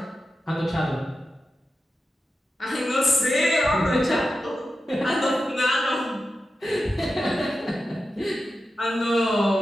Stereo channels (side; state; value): both; normal; correlation 0.91